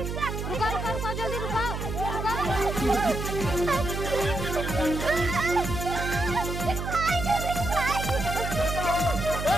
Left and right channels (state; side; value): noise; right; hum, 4 dB below the sound